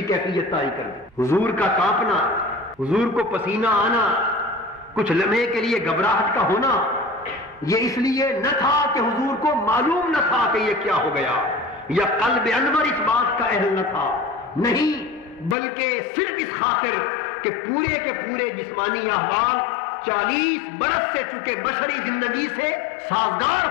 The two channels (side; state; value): right; drops out; at 15.6 s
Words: کیفیت طاری کر دی. حضور کا کانپنا، حضور کو پسینہ آنا، کچھ لمحے کے لیے گھبراہٹ کا ہونا، یہ اس لیے نہ تھا کہ حضور کو معلوم نہ تھا کہ یہ کیا ہو گیا یا قلب انور اس بات کا اہل نہ تھا، نہیں، بلکہ صرف اس خاطر کہ پورے کے پورے جسمانی احوال 40 برس سے چکے بشری زندگی سے سازگار